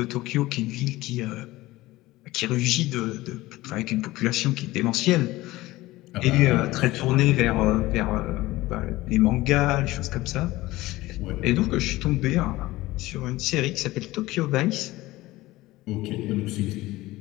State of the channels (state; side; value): quieter; right; 18.3 dB